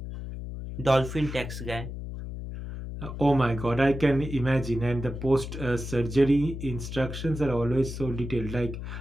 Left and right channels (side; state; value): left; noise; hum, 8 dB below the sound